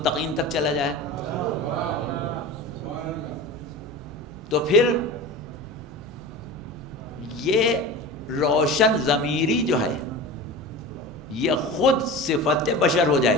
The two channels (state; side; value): normal; both; correlation 0.31